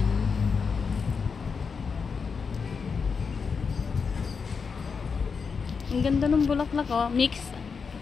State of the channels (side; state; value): right; quieter; 5.5 dB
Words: Ang ganda ng bulaklak, oh. Mix.